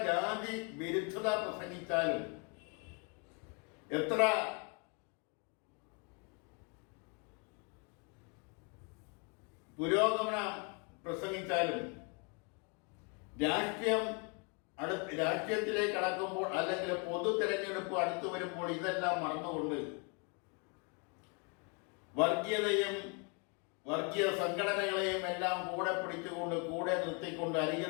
ജാതി വിരുദ്ധത പ്രസംഗിച്ചാലും, എത്ര പുരോഗമനം പ്രസംഗിച്ചാലും, രാഷ്ട്രീയത്തിലേക്ക് കടക്കുമ്പോൾ അല്ലെങ്കിൽ പൊതു തെരഞ്ഞെടുപ്പ് അടുത്തു വരുമ്പോൾ ഇതെല്ലാം മറന്നുകൊണ്ട് വർഗീയതയും വർഗീയ സംഘടനകളെയും എല്ലാം കൂടെ പിടിച്ചുകൊണ്ട്, കൂടെ നിർത്തിക്കൊണ്ട്,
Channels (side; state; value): right; quieter; 34.3 dB